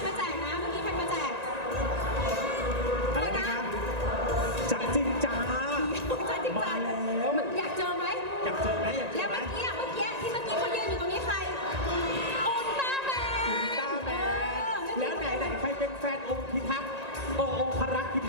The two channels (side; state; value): left; late; 1.9 ms